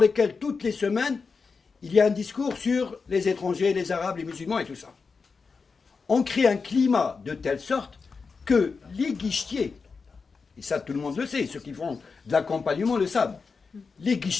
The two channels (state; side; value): quieter; right; 4.9 dB